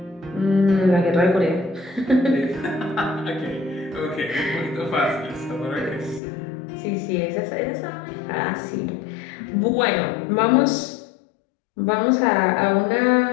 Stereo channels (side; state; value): right; drops out; at 6.2 s